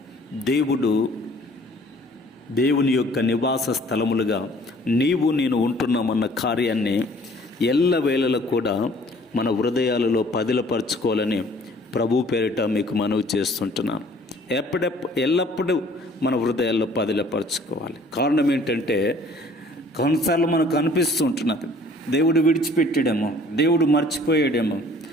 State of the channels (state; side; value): normal; both; correlation 0.55